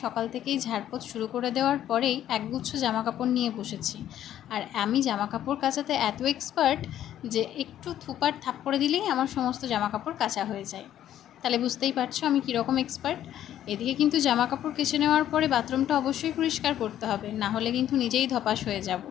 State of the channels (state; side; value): quieter; right; 11.5 dB